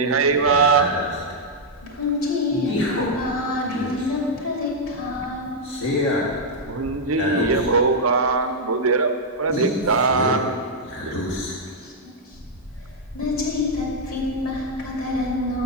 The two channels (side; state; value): both; normal; correlation -0.03